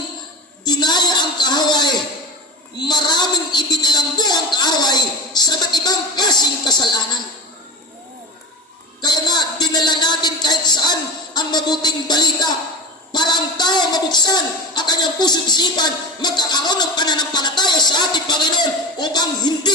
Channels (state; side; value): normal; both; correlation 0.27